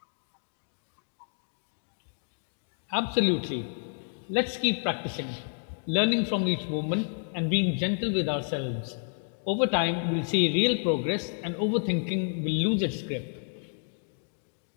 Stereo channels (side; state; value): right; silent; digital silence